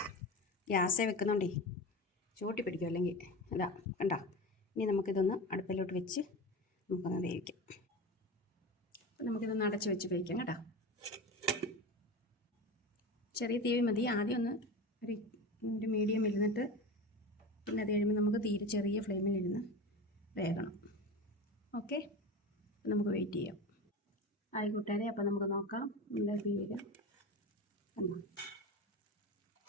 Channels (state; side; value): normal; both; correlation 0.27